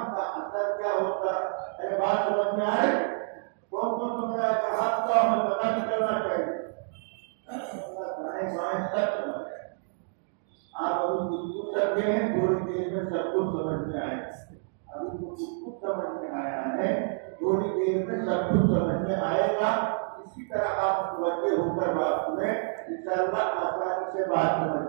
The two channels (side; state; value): left; silent; digital silence